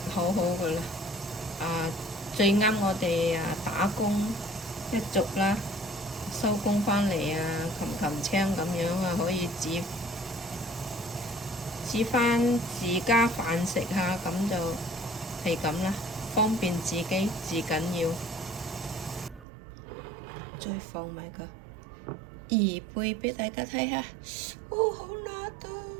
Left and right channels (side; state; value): left; drops out; at 19.5 s